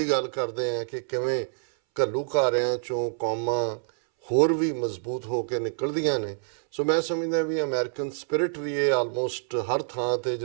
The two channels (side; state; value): left; silent; 60 dB below the other